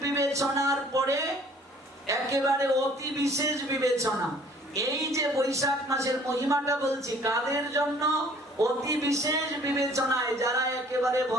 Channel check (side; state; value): both; normal; correlation 0.55